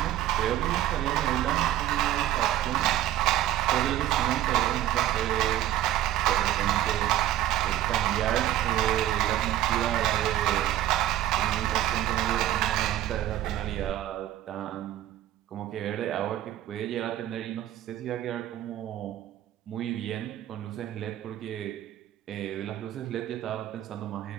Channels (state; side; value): quieter; left; 13.1 dB